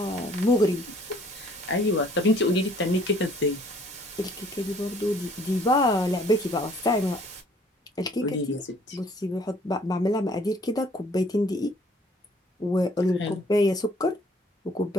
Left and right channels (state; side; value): normal; both; correlation 0.58